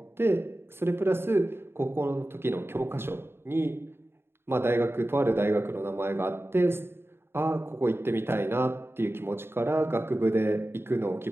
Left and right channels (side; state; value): left; late; 0.11 ms